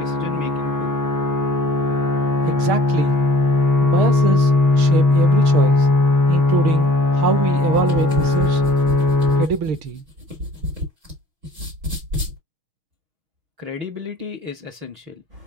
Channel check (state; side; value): late; left; 6.5 ms